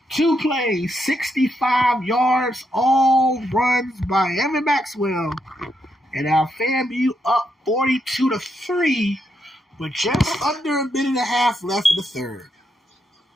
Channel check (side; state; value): both; normal; correlation 0.80